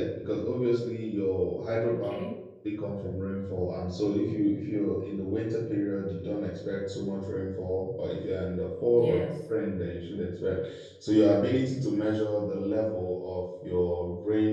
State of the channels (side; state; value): both; identical; correlation 1.00